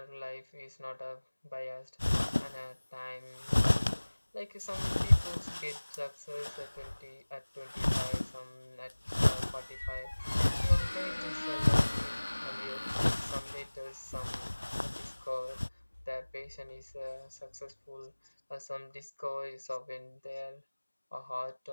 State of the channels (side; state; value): both; inverted; correlation -1.00